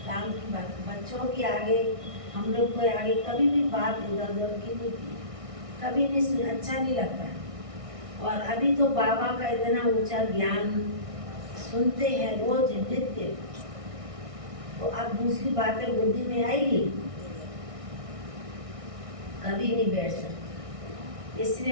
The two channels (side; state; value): left; late; 1.6 ms